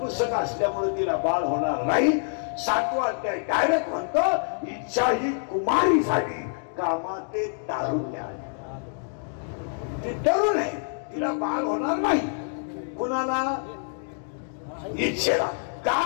असल्यामुळे तिला बाळ होणार नाही. 7वा अध्याय डायरेक्ट म्हणतो, इच्छा ही कुमारी झाली, कामात ते तारुण्य आले. ती तरुण आहे, तिला बाळ होणार नाही. कुणाला? इच्छेला. का?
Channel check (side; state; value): right; silent; digital silence